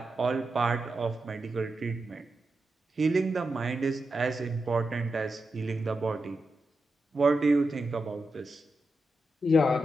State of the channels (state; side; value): normal; both; correlation 0.89